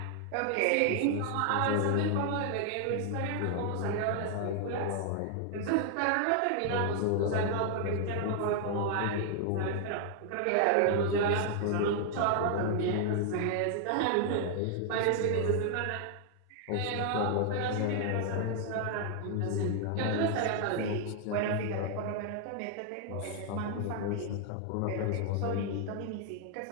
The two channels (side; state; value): both; different; correlation 0.00